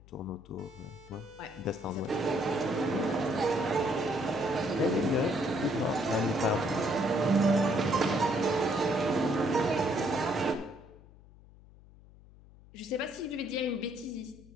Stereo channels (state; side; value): noise; left; hum, 23 dB below the sound